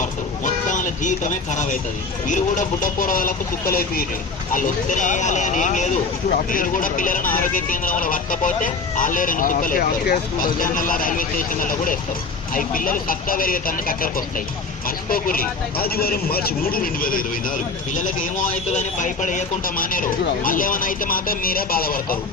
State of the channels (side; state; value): right; quieter; 4.0 dB